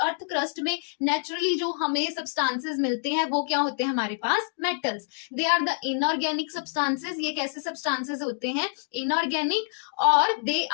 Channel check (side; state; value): right; silent; digital silence